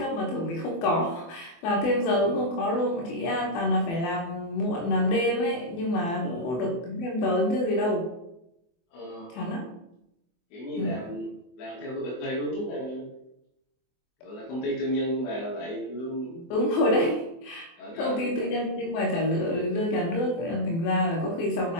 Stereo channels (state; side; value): late; right; 24 ms